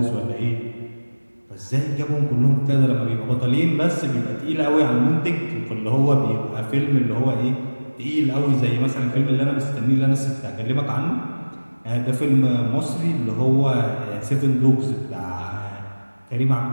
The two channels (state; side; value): inverted; both; correlation -1.00